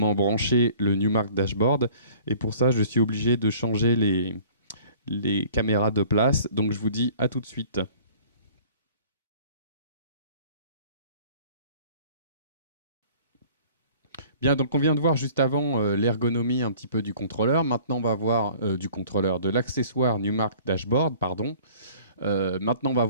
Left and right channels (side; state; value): both; inverted; correlation -0.50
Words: brancher le Numark Dashboard, et pour ça je suis obligé de changer les caméras de place, donc je vous dis à tout de suite. Bien, donc on vient de voir juste avant l'ergonomie un petit peu du contrôleur. Maintenant, on va voir de l'accessoire Numark Dashboard, pardon. Maintenant, on va